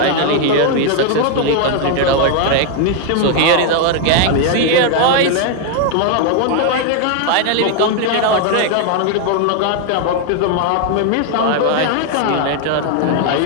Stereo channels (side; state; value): both; different; correlation 0.00